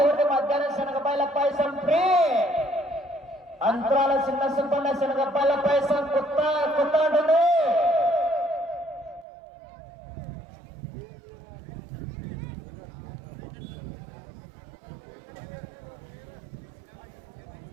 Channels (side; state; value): left; drops out; at 9.2 s